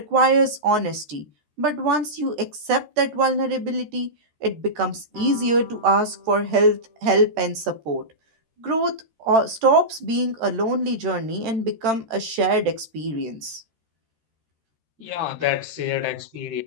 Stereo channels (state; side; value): late; left; 13 ms